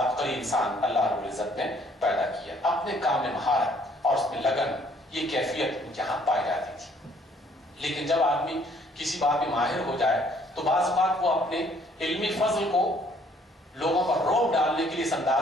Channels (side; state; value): both; normal; correlation 0.62